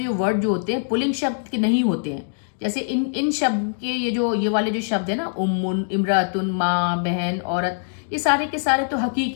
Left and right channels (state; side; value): silent; right; digital silence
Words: वर्ड जो होते हैं पुलिंग शब्द के नहीं होते हैं, जैसे इन शब्द के ये वाले जो शब्द है ना, उम्मुन, इमरातुन, माँ, बहन, औरत, ये सारे के सारे तो